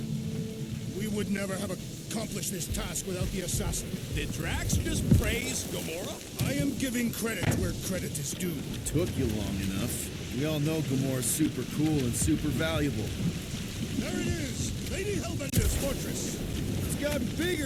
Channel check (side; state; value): both; identical; correlation 1.00